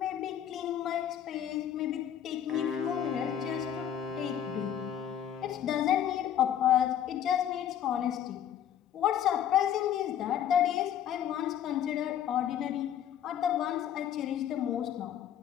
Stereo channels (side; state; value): right; quieter; 9.9 dB